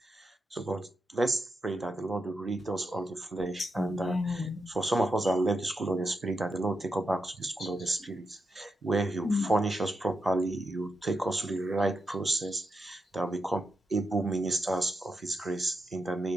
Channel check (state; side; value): normal; both; correlation 0.85